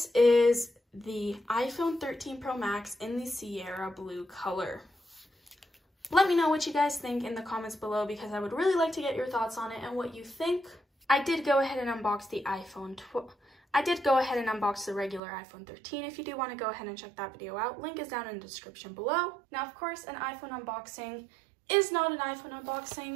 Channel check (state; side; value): drops out; left; at 15.2 s